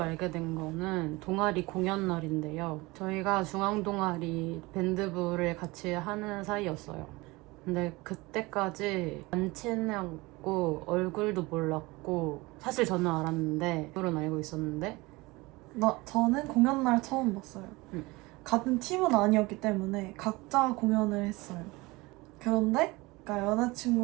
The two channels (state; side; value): quieter; left; 22.7 dB